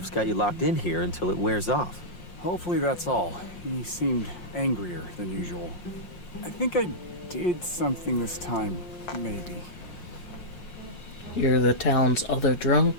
got you locked in here until it wears off. Hopefully that's all. He seemed angrier than usual. I think I did something this time, maybe. You're the town's other drunk?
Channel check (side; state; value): right; late; 5.6 ms